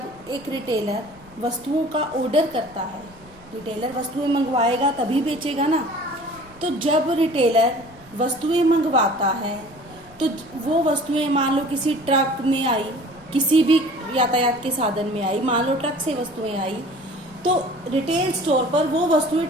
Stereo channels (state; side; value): noise; right; rumble, 24 dB below the sound